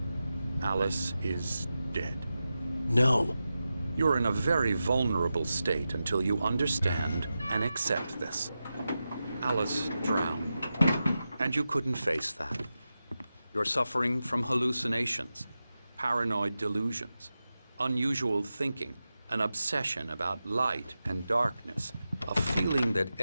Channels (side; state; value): both; inverted; correlation -0.92